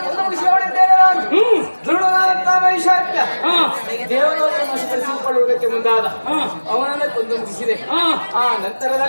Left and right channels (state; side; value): inverted; both; correlation -1.00